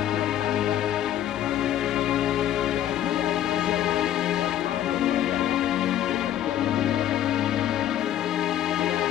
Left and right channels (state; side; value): quieter; right; 11.5 dB